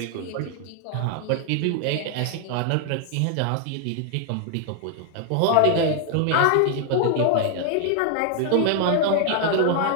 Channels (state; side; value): different; both; correlation 0.00